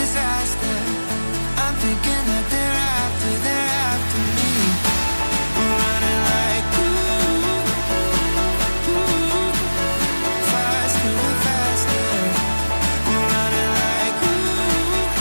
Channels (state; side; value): inverted; both; correlation -1.00